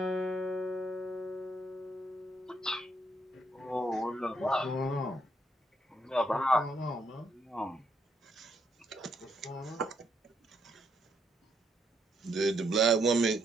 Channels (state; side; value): normal; both; correlation 0.75